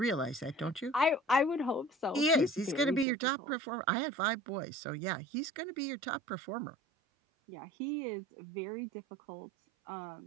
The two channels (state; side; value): drops out; left; at 3.1 s